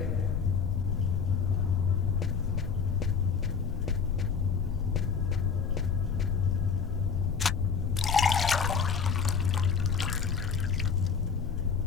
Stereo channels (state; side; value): quieter; right; 6.0 dB